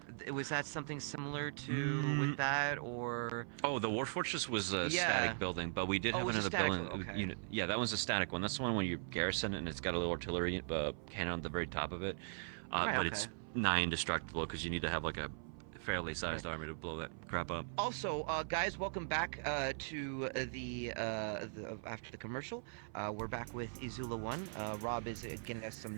Was that something similar to with that, or? Oh, the War Fortress was a static building, but we did have another building unit. Yeah, that one's a static one. That's the one when you garrison it, and it's got a little artillery cannon on the very top of it. It's nigh indestructible because you need to have like a fairly sized army to blow that crap up. Also, guys, welcome back to the after the commercial. We're back with EzulaOne. Rob is getting us some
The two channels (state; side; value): silent; left; 51 dB below the other